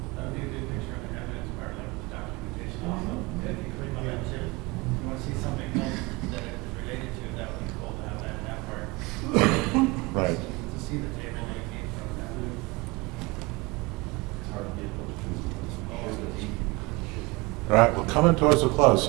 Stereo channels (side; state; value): left; quieter; 24.7 dB